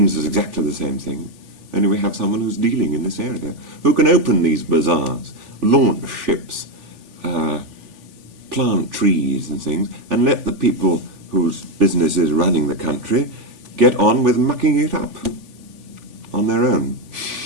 is exactly the same thing. Only we have someone who's dealing in this area, who can open these bazaars, launch ships, plant trees and things, and let the people whose business is running the country get on with mucking it up on their own.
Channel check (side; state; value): left; late; 3.5 ms